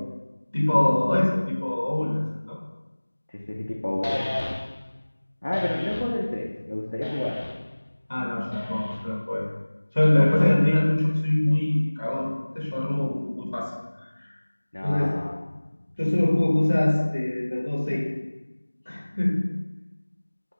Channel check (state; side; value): inverted; both; correlation -1.00